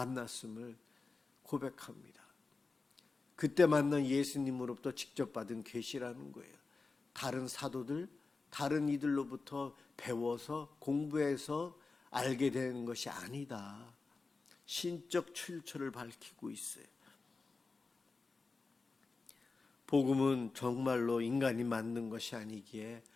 고백합니다. 그때 만난 예수님으로부터 직접 받은 계시라는 거예요. 다른 사도들, 다른 이들로부터 배워서 공부해서 알게 되는 것이 아니다. 신적 출처를 밝히고 있어요. 복음은 정말로 인간이 만든 것이 아니기에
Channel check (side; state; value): right; quieter; 4.0 dB